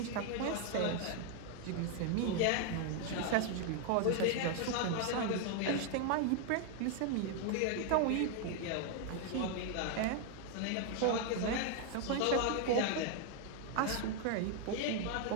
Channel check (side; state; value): both; different; correlation 0.00